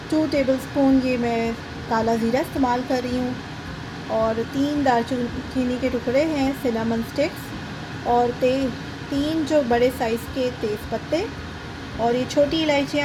2 टेबलस्पून ये मैं काला ज़ीरा इस्तेमाल कर रही हूँ, और 3 दालचीनी के टुकड़े हैं, सिनेमन स्टिक्स, और 3 जो बड़े साइज़ के तेज़ पत्ते, और ये छोटी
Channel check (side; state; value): both; identical; correlation 1.00